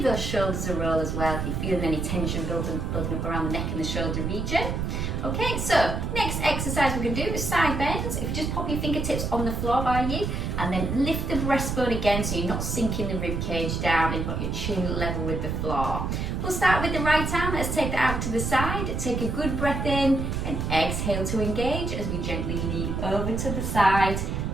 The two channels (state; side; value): noise; right; rumble, 2 dB below the sound